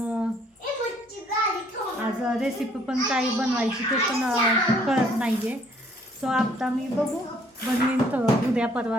आज रेसिपी पण काही बनवायची ते पण कळत नाही आहे. सो आता मी बघू बनवीन उद्या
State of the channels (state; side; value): normal; both; correlation 0.62